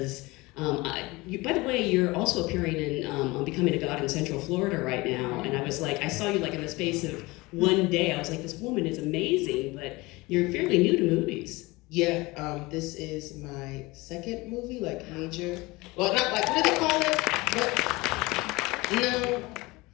By the way, you're also appearing in on Becoming a God in Central Florida right now, and I was like, I saw you like in the space of one day. I was like, this woman is amazing, but you're fairly new to movies. Yeah, this is my second movie, like major. Well, not like, what do they call it? But, no.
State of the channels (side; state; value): right; quieter; 22.4 dB